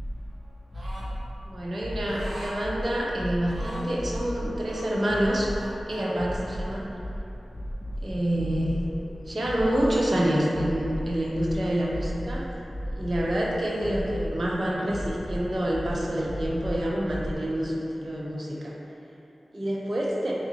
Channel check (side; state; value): both; normal; correlation 0.96